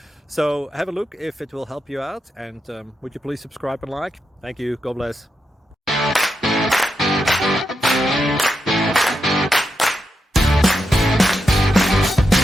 So have a look if it will help you out, and would you please subscribe and like? Thank you. God bless.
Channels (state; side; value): normal; both; correlation 0.85